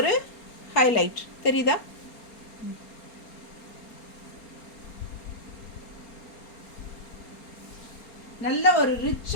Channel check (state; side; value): late; right; 4.3 ms